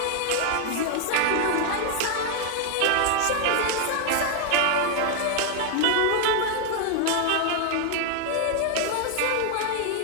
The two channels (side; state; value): both; different; correlation 0.00